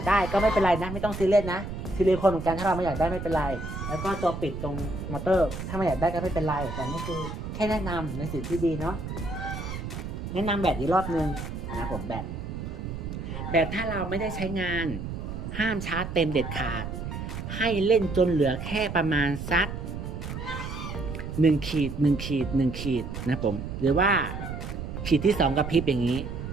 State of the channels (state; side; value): noise; right; rumble, 7 dB below the sound